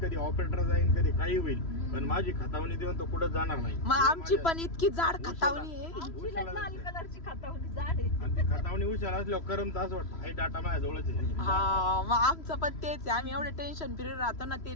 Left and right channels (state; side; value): late; right; 3.0 ms